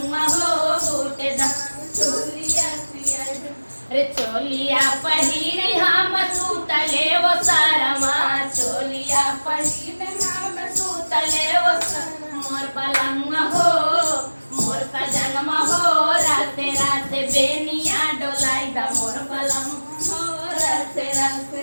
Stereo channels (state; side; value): inverted; both; correlation -1.00